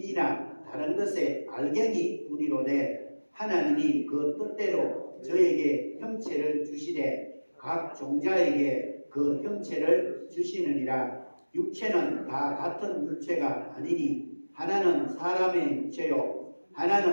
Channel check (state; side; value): inverted; both; correlation -1.00